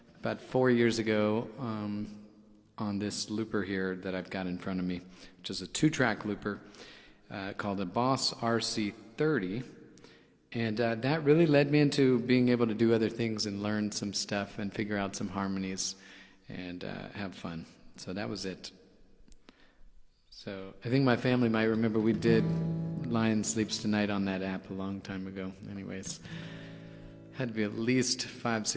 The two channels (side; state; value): both; identical; correlation 1.00